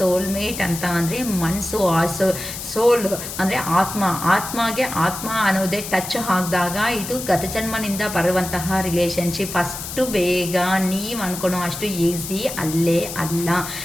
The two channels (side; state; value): left; noise; hiss, 8 dB below the sound